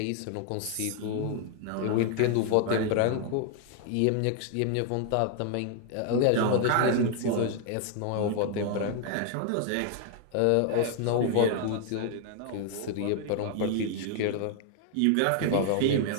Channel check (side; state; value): both; different; correlation 0.00